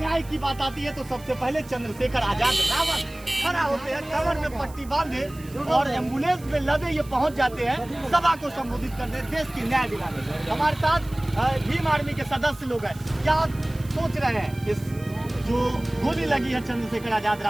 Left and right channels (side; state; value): right; noise; hiss, 22 dB below the sound